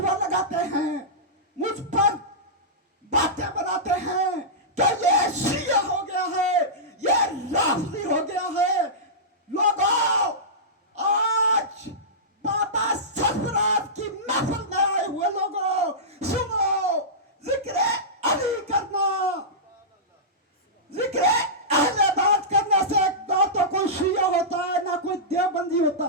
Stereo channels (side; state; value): both; normal; correlation -0.16